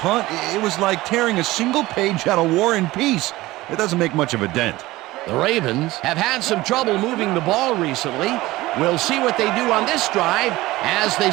it was like tearing a single page out of War and Peace. It doesn't make much of a dent. The Ravens have had some trouble moving the ball recently. We'll see what they do on this drive as they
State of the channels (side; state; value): left; quieter; 18.4 dB